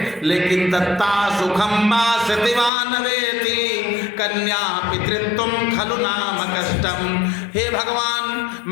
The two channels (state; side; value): drops out; right; at 2.7 s